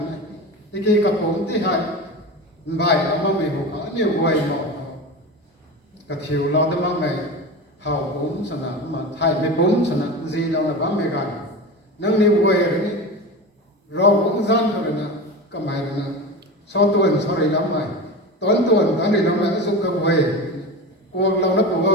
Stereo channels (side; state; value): both; normal; correlation 0.27